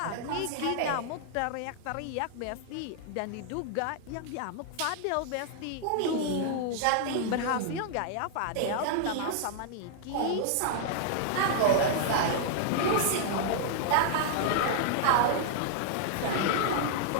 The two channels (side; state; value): both; different; correlation -0.01